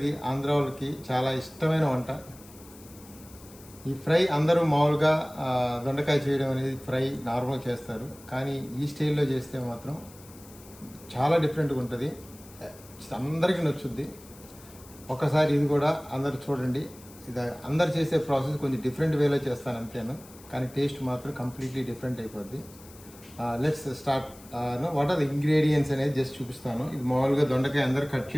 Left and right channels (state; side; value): noise; left; hiss, 21 dB below the sound